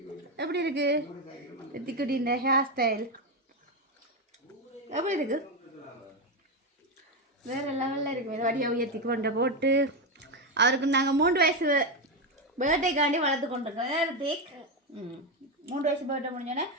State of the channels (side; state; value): both; normal; correlation 0.10